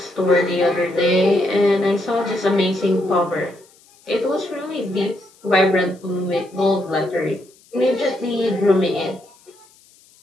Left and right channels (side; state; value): left; noise; hiss, 29 dB below the sound